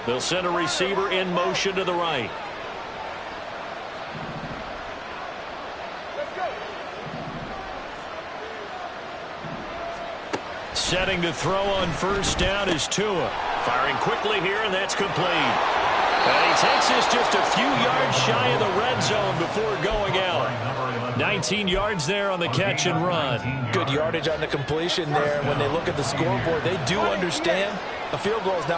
They'll send a receiver in motion to the right. Setting to throw on 1st down is Tua. Firing quickly here, and that's complete. And he takes this just a few yards shy of the red zone before going out. 19 yards there on the catch and run. Good yardage on the completion there. When they look at the scoreboard, they do understand a field goal is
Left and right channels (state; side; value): identical; both; correlation 1.00